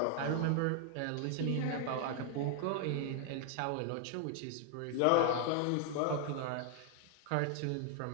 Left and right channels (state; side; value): different; both; correlation 0.00